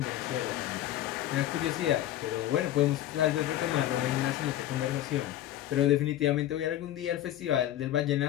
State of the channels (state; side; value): quieter; right; 13.0 dB